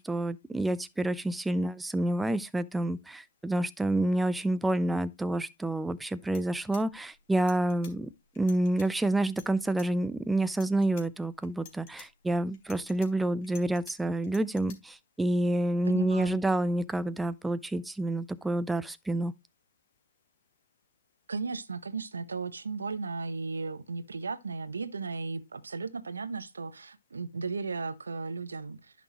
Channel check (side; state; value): both; normal; correlation 0.80